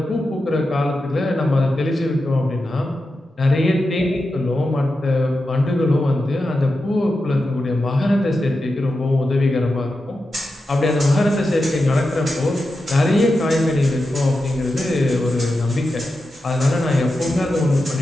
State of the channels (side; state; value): both; normal; correlation 0.90